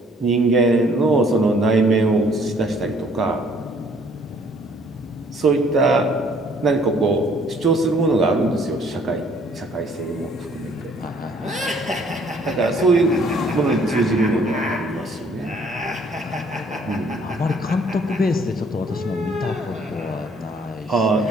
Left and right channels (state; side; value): normal; both; correlation 0.61